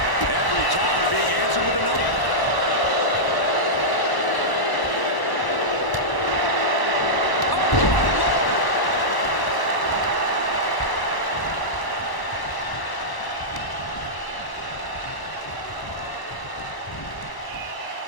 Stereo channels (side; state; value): right; late; 1.0 ms